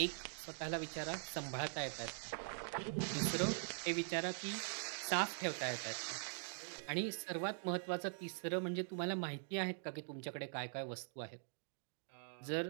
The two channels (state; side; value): silent; left; digital silence